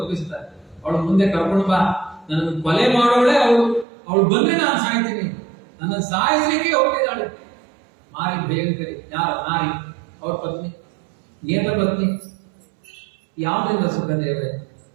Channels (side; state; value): left; drops out; at 3.9 s